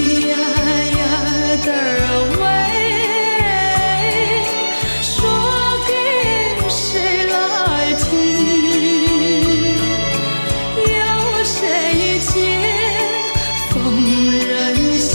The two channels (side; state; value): both; inverted; correlation -1.00